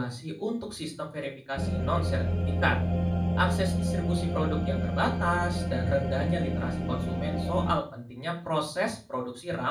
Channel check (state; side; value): identical; both; correlation 1.00